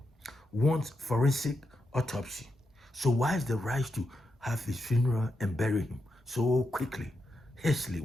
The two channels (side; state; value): both; normal; correlation 0.85